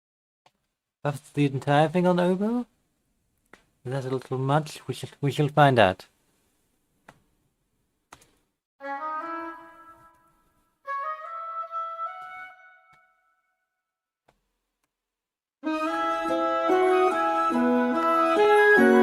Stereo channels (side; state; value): both; identical; correlation 1.00